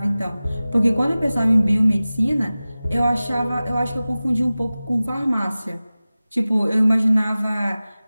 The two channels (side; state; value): both; inverted; correlation -0.97